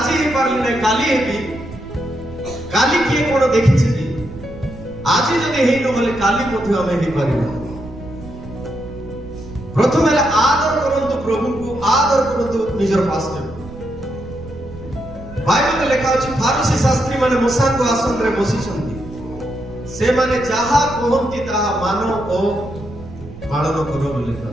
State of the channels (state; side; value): noise; right; rumble, 15 dB below the sound